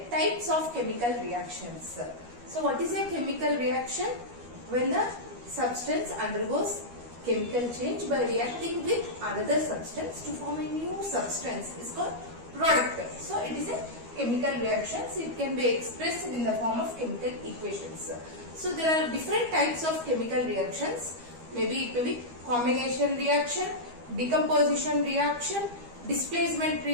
types of chemical reactions. So what is a chemical reaction? When the substance undergoes chemical change by reacting with another substance to form a new substance is called product. So it is a chemical reaction. So it can be expressed in the form of chemical equations. So there are different types of chemical reactions. Maybe it may be combination reaction, decomposition reaction, displacement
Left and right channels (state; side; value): late; left; 12 ms